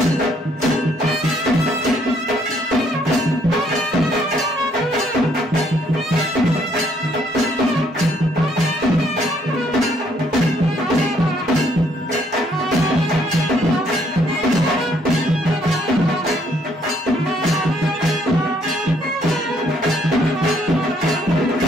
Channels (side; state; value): both; normal; correlation 0.68